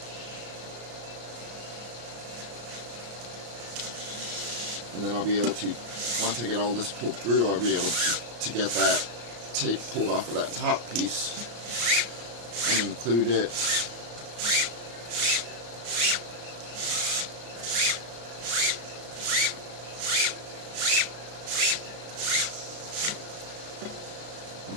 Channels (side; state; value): left; late; 34 ms